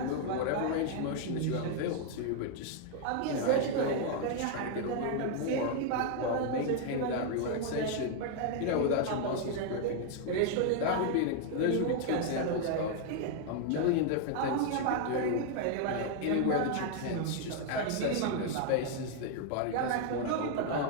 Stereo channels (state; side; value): different; both; correlation 0.00